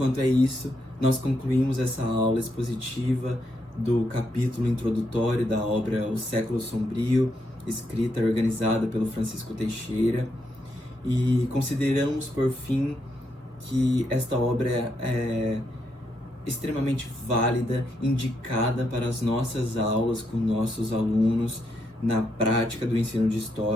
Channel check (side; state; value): left; late; 2.1 ms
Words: é isso, nós concluímos essa aula expositiva do capítulo introdutório da obra O Século Sombrio, escrita e organizada pelo Francisco Teixeira, e consideramos, por fim, que esta obra é extremamente válida, indicada para as nossas aulas com nossos alunos na prática do ensino de